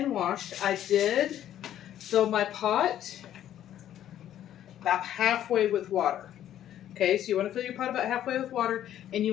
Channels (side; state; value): right; quieter; 11.4 dB